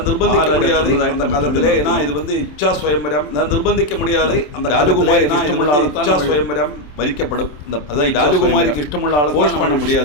நிர்பந்திக்க முடியாது அந்த காலத்திலே. ஏன்னா இது இச்சா சுயம்பரம், நான் நிர்பந்திக்க முடியாது. அந்த ராஜகுமாரி இச்சா சுயம்பரம் வரிக்கப்படும். அதான் ராஜகுமாரிக்கு இஷ்டமுள்ள ஆளை ஃபோர்ஸ் பண்ண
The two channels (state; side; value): late; right; 27 ms